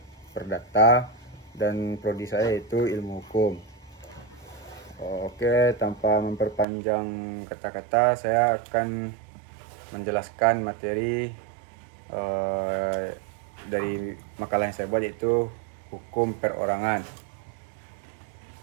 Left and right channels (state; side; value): drops out; left; at 6.7 s